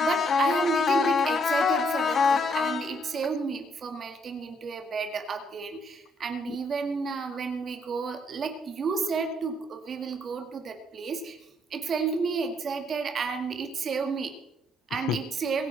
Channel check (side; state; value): both; normal; correlation 0.70